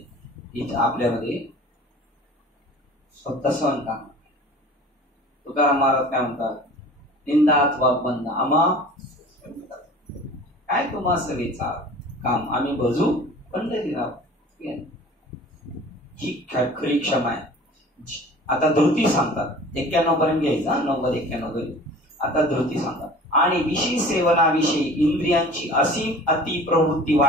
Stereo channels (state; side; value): normal; both; correlation 0.44